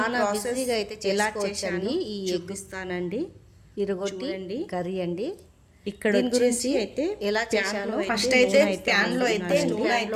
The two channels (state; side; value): identical; both; correlation 1.00